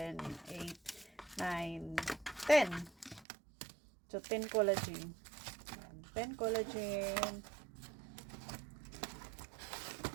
8, 9, 10. So, 10 collagen. 10 collagen.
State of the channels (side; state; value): left; drops out; at 3.2 s